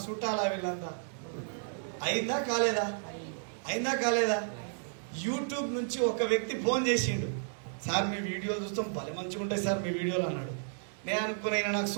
చుట్టాలా? వీళ్ళంతా అయిందా కాలేదా? అయిందా కాలేదా? యూట్యూబ్ నుంచి ఒక వ్యక్తి ఫోన్ చేసిండు, సార్ మీ వీడియోలు చూస్తాం భలే మంచిగా ఉంటాయి సార్ మీ వీడియోలు అన్నాడు. నేను అనుకున్నా నాకు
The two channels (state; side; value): silent; left; digital silence